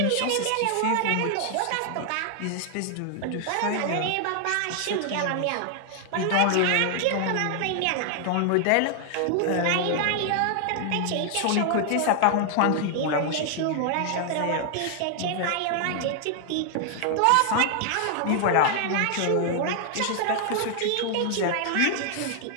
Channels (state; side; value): different; both; correlation 0.00